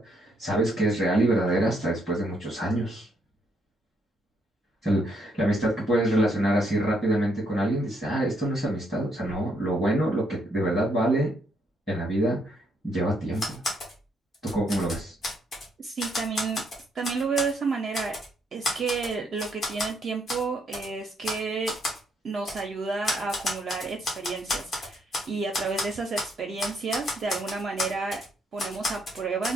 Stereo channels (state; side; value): normal; both; correlation 0.73